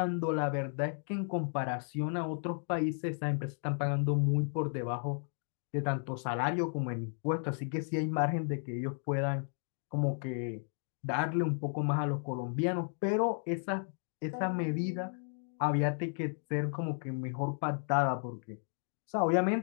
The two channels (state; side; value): silent; right; 55 dB below the other